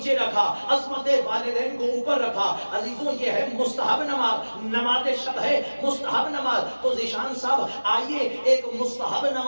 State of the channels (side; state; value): both; inverted; correlation -1.00